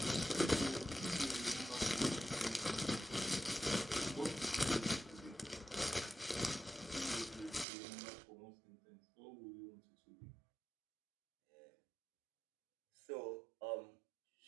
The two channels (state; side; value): drops out; left; at 7.7 s